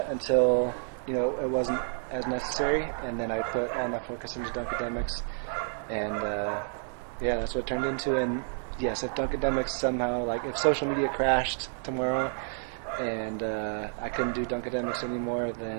until it wasn't as necessary, and then I put all my focus into DUNKADEMICS, and yeah, that's what it turned into. And yes, if DUNKADEMICS somehow, like, if social media crashed tomorrow and I couldn't do DUNKADEMICS anymore,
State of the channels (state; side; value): silent; left; 55 dB below the other